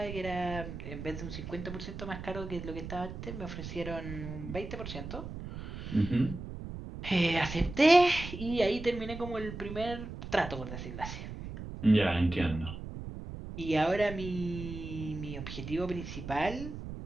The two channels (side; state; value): right; noise; rumble, 9 dB below the sound